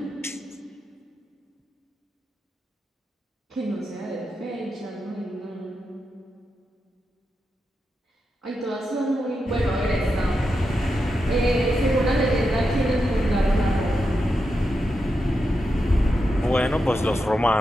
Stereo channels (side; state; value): both; normal; correlation 0.87